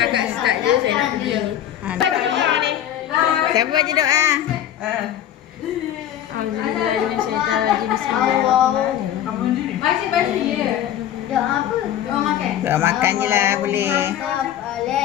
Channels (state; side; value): quieter; right; 11.3 dB